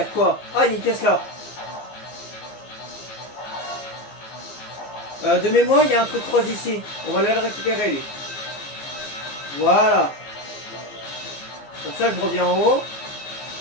quoi? Ah, il y a une pièce là. De mémoire, il y a un truc rose ici. On va aller le récupérer, lui. Voilà. Comme ça, je reviens en haut.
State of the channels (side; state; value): right; late; 15 ms